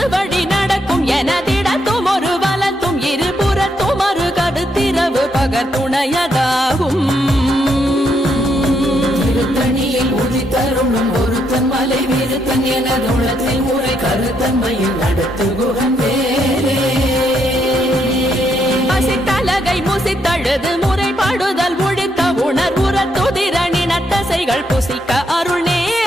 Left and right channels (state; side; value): normal; both; correlation 0.76